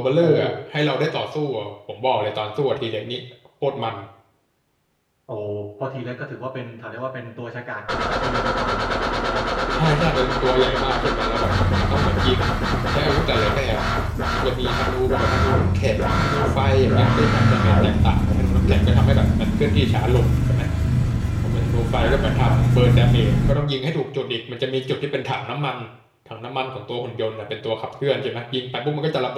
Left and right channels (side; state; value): both; identical; correlation 1.00